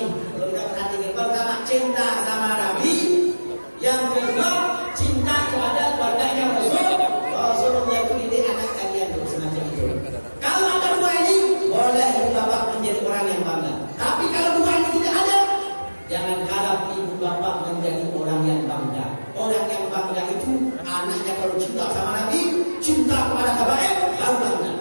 kalau kita perhatikan, pertama cinta sama Nabi, yang kedua cinta kepada keluarganya Rasulullah itu ini anak kalian tuh semacam itu. Kalau ada dua ini, boleh ibu bapak menjadi orang yang bangga. Tapi kalau dua ini tidak ada, jangan harap ibu bapak menjadi orang yang bangga. Orang yang bangga itu anaknya kalau cinta sama Nabi, cinta kepada habaib, baru bangga.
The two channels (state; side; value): inverted; both; correlation -1.00